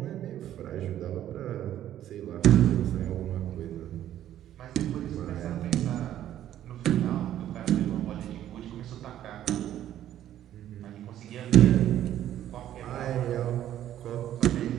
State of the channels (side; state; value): left; quieter; 11.8 dB